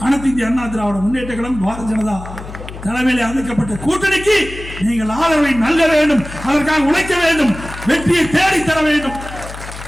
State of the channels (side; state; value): left; noise; hum, 12 dB below the sound